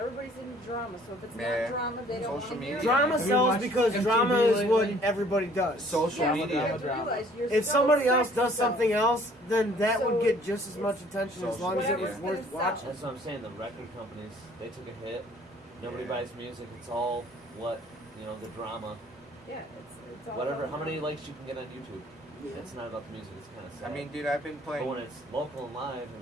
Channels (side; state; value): both; normal; correlation 0.56